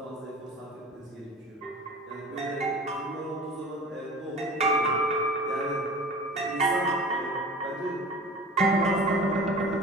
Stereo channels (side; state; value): both; normal; correlation 0.40